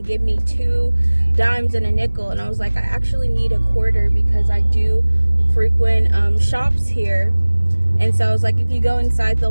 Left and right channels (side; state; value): both; inverted; correlation -1.00